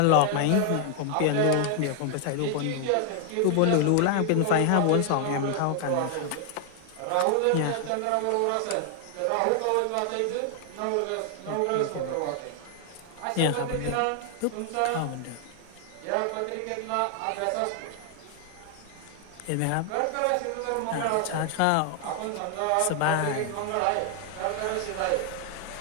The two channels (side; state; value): both; different; correlation 0.00